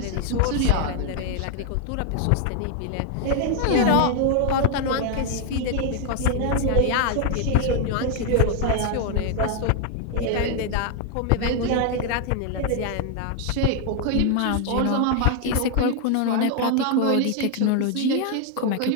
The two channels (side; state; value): both; different; correlation 0.00